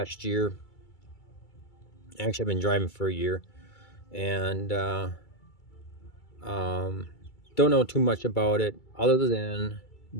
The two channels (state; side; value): late; right; 2.3 ms